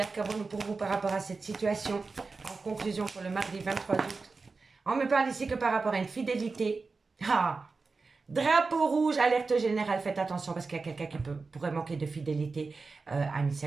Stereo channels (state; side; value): quieter; left; 4.2 dB